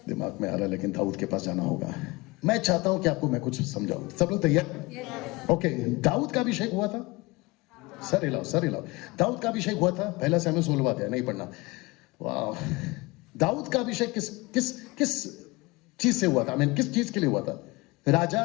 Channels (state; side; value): quieter; right; 23.6 dB